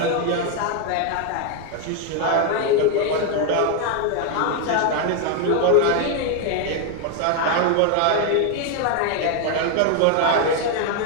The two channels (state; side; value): different; both; correlation 0.01